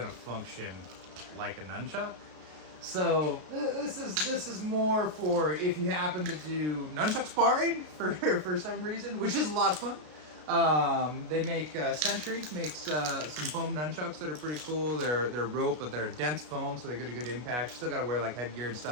to function like a nunchuck. So this is more for if you happen to do nunchuck sparring for some reason, which is a lot of fun. They make Sentry makes some foam nunchucks that are pretty cool. They're rope, but they're dense foam, so they get a good impact. You still got to wear like headgear and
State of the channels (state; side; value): late; left; 33 ms